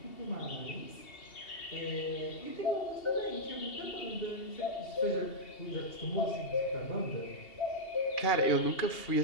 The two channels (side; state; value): right; late; 2.8 ms